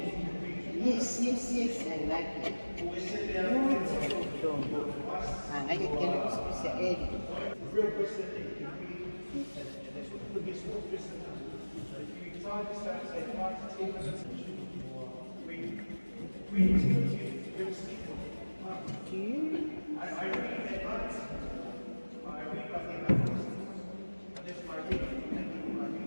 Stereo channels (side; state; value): both; inverted; correlation -1.00